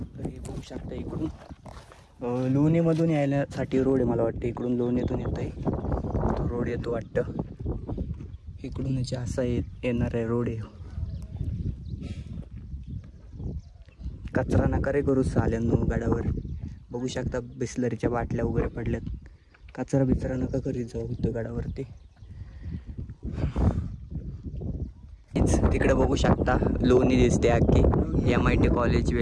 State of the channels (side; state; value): both; identical; correlation 1.00